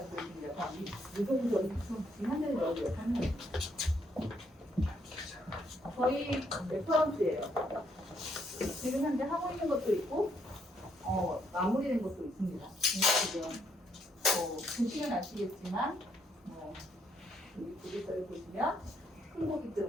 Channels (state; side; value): normal; both; correlation 0.72